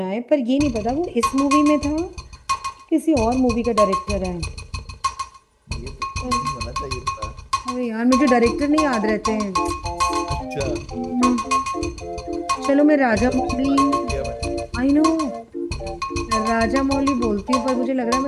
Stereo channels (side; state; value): both; identical; correlation 1.00